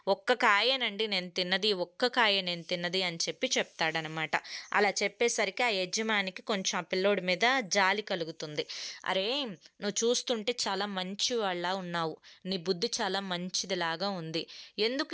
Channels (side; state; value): both; identical; correlation 1.00